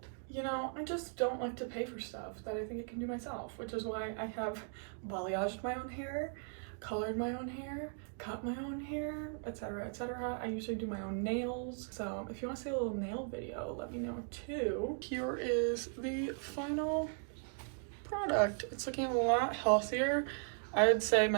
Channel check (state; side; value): silent; left; 53 dB below the other